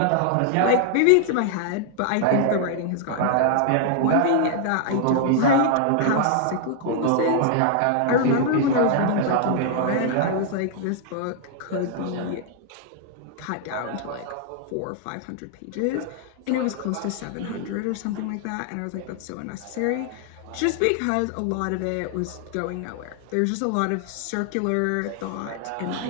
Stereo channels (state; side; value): different; both; correlation 0.00